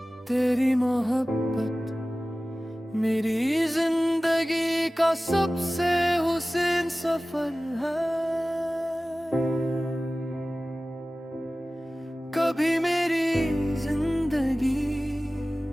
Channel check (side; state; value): both; normal; correlation 0.97